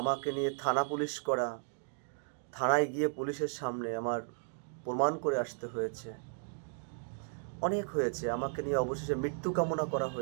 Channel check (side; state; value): left; silent; digital silence